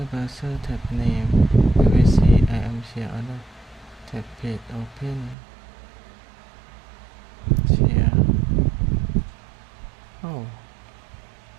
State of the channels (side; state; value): left; drops out; at 5.4 s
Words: browser tab name. You will see I am share order. tag page open share. Oh,